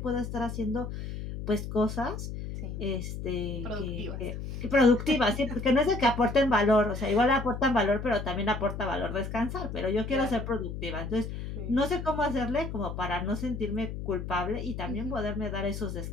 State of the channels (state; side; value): noise; left; hum, 7 dB below the sound